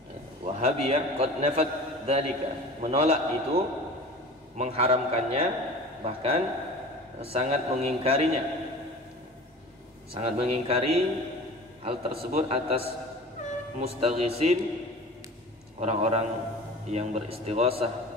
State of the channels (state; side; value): normal; both; correlation 0.39